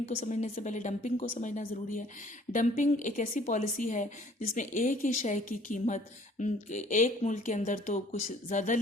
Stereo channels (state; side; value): normal; both; correlation 0.56